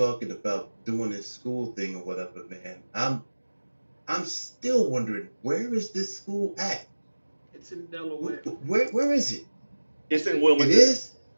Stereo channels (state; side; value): inverted; both; correlation -1.00